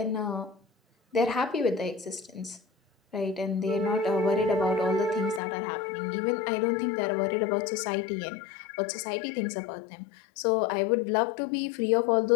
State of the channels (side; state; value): right; drops out; at 5.4 s